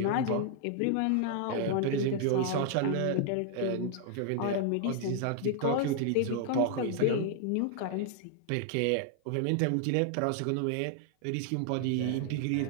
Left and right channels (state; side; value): different; both; correlation 0.00